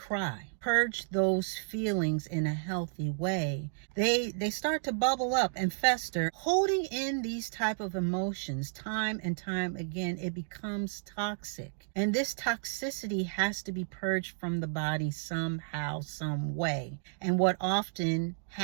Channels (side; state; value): left; silent; digital silence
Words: purge those feelings in a healthy way, they start to bubble up and fester. Holding in these type of emotions time and time again, it becomes toxic. And this toxicity has to be purged from the body somehow, some way. And what often